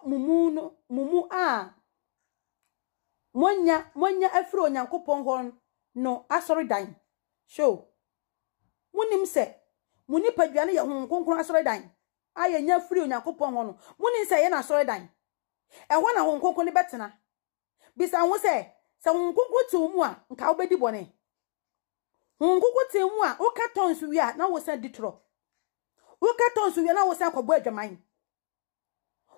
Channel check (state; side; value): silent; right; 60 dB below the other